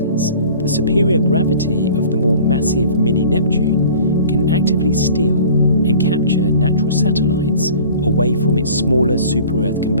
the superior gravity of the more massive mini-Neptune can actively steal and capture natural satellites away from its smaller super-Earth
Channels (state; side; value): inverted; both; correlation -0.45